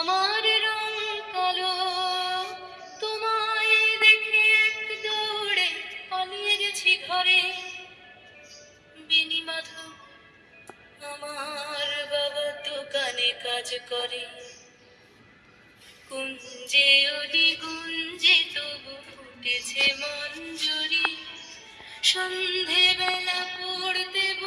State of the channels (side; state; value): both; identical; correlation 1.00